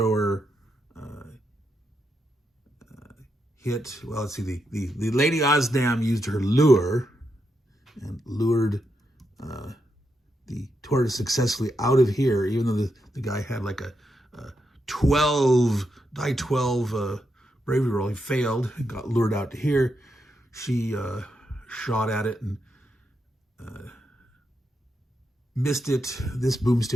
hit. Well, let's see. The Lady Osnam used her lure and lured the tortoise successfully out of here, even though the guy had like a 12 bravery roll. He failed and got lured out to here. She shot at it and missed it. This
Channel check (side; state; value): both; normal; correlation 0.83